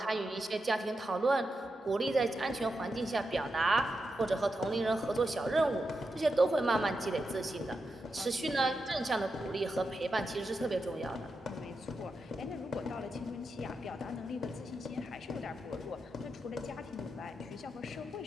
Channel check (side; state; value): both; normal; correlation 0.87